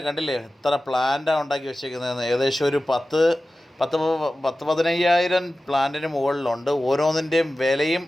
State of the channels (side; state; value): both; normal; correlation 0.95